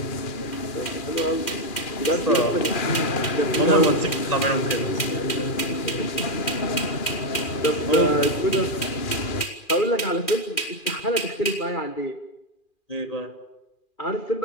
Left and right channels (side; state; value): right; late; 2.4 ms